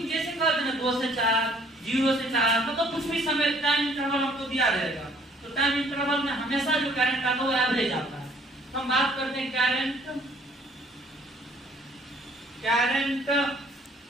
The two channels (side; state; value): both; normal; correlation 0.59